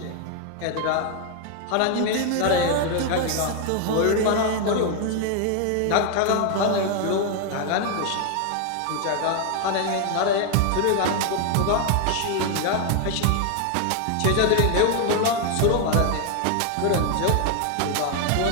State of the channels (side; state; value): both; different; correlation 0.00